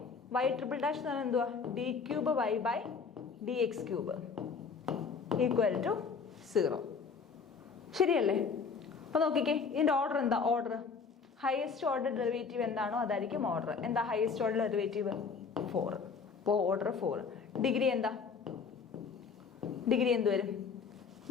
y എന്ന് പറഞ്ഞാൽ എന്തുവാ? d⁻y/dx⁵ ശരിയല്ലേ? അപ്പൊ നോക്കിക്കേ, ഇതിന്റെ ഓർഡർ എന്താ? ഓർഡർ ഹയസ്റ്റ് ഓർഡർ ഡെറിവേറ്റീവ് എന്താണോ അതായിരിക്കും ഓർഡർ. എന്താ ഹയസ്റ്റ് ഓർഡർ ഡെറിവേറ്റീവ്? 4. അപ്പോൾ ഓർഡർ 4. ഡിഗ്രി എന്താ? ഡിഗ്രി എന്ത് വരും?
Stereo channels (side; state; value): right; quieter; 5.4 dB